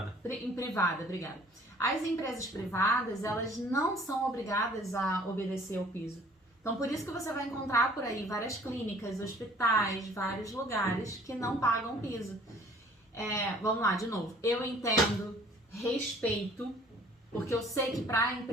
Em privada, obrigada. As empresas privadas, elas não são obrigadas a obedecer ao piso. Então, por isso que você vai encontrar por aí várias clínicas, hospitais, vários lugares que não pagam piso. Vamos lá, de novo. Eu entendo, respeito, porque eu sei que para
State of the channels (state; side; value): normal; both; correlation 0.54